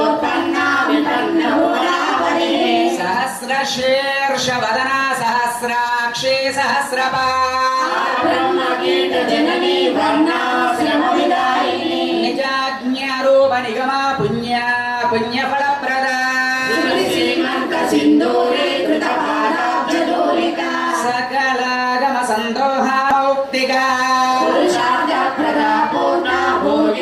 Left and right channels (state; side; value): identical; both; correlation 1.00